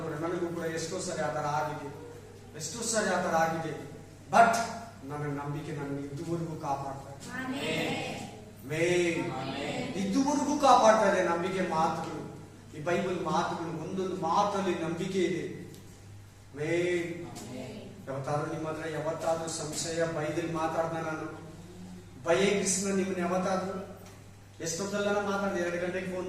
ಕೂಡ ನನಗೂ ಕೂಡ ಎಷ್ಟೋ ಸರಿ ಆ ತರ ಆಗಿದೆ. ಬಟ್ ನನ್ನ ನಂಬಿಕೆ ನನ್ನ ಇದುವರೆಗೂ ಕಾಪಾಡ್ತಾ ಇದುವರೆಗೂ ಕಾಪಾಡ್ತಾ ಇದೆ. ನಂಬಿಕೆ ಮಾತುಗಳು, ಈ ಬೈಬಲ್ ಮಾತುಗಳು, ಒಂದೊಂದು ಮಾತಲ್ಲಿ ನಂಬಿಕೆ ಇದೆ. ಯಾವತ್ತಾದ್ರೂ ನಿಮ್ಮ ಹತ್ರ ಯಾವತ್ತಾದ್ರೂ ಸಂಶಯ ಬೈದಲ್ಲಿ ಮಾತಾಡ್ದ ನಾನು ಭಯ ಕೃಷ್ಣ ನಿಮ್ಮನ್ನ ಯಾವತ್ತಾದ್ರೂ ಎಷ್ಟೊತ್ತಲ್ಲ ಮಾತಾಡ್ದೆ? 2 ಗಂಟೆಗೆ ಫೋನ್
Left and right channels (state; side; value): identical; both; correlation 1.00